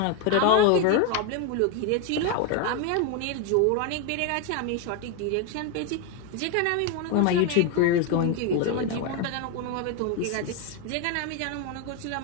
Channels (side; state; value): both; different; correlation 0.01